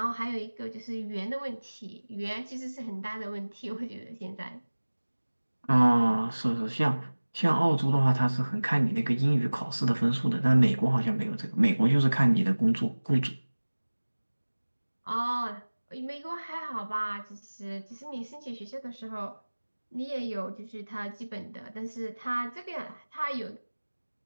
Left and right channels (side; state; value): both; inverted; correlation -1.00